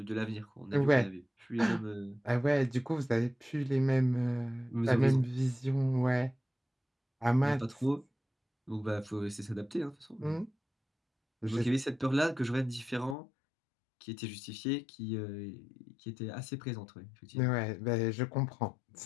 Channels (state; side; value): drops out; right; at 13.2 s